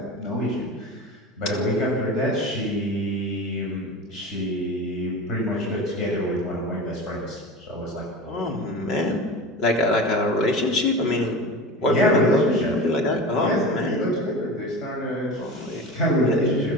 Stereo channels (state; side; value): normal; both; correlation 0.31